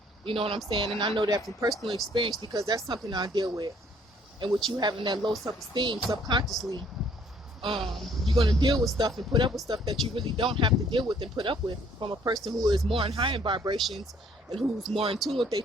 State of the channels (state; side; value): normal; both; correlation 0.62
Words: You know what I'm saying? And I know that from personal experience because that's something I deal with. And with you having that low self-esteem subconsciously, you're going to deal with stuff and put up with stuff that you really don't have to deal with and put up with from a person who is more in higher vibrations and who's more in tune with their